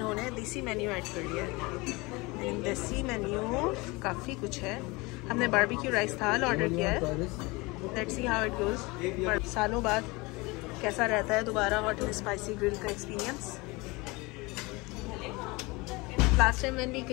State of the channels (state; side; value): quieter; right; 24.4 dB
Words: देसी मेन्यू ऐड कर लिया है। देसी मेन्यू काफ़ी कुछ है। हमने बारबेक्यू राइस थाल ऑर्डर किया है, let's see how it goes. पर सालों बाद कैसा रहता है दोबारा हॉट एंड स्पाइसी ग्रिल का experience. Last time when we